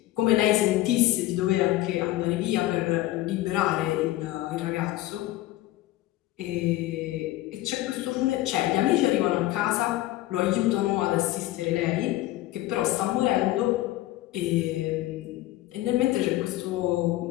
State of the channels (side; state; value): right; quieter; 16.0 dB